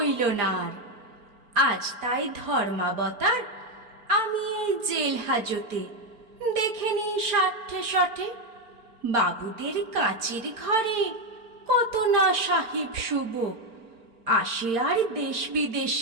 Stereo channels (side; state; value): left; late; 4.4 ms